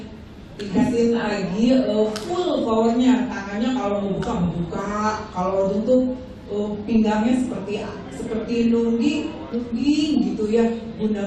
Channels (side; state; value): both; identical; correlation 1.00